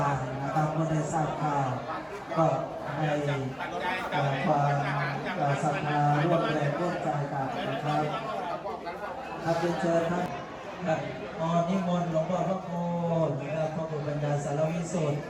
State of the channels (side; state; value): both; identical; correlation 1.00